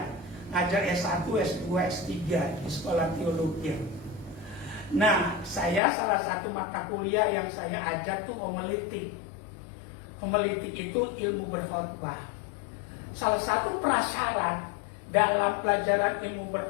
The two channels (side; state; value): right; drops out; at 5.8 s